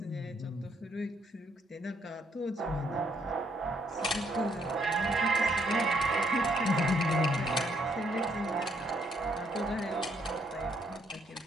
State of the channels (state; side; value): normal; both; correlation 0.70